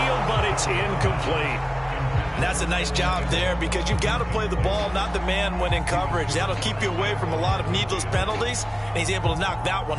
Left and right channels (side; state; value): both; identical; correlation 1.00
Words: but it's incomplete. And that's a nice job there because you've got to play the ball, not the man when in coverage. That'll keep you away from a lot of needless penalties, and he's able to knock that one